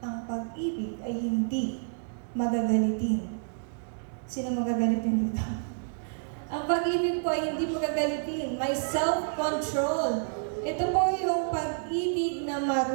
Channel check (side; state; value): left; silent; digital silence